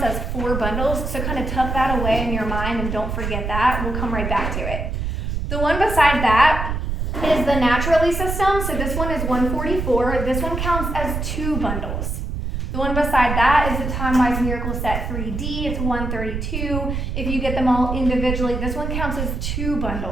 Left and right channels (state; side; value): noise; right; rumble, 3 dB below the sound